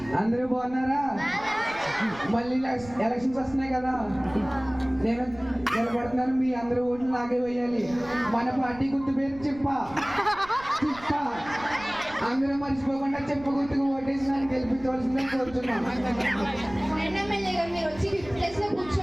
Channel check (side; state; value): right; noise; rumble, 19 dB below the sound